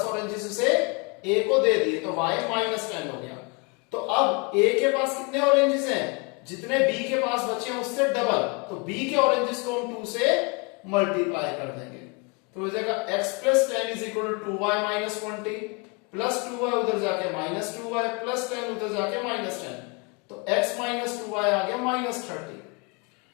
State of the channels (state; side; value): quieter; right; 30.6 dB